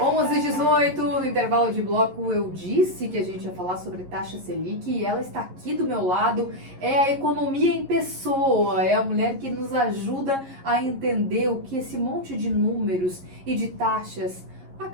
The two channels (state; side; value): late; left; 11 ms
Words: 11h18, no intervalo de bloco, eu disse que a gente ia falar sobre taxa Selic e ela está aqui do meu lado. É a economia em pessoa, é a mulher que nos ajuda a entender o que esse monte de números e de taxas